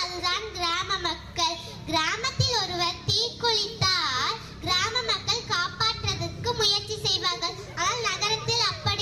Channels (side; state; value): both; identical; correlation 1.00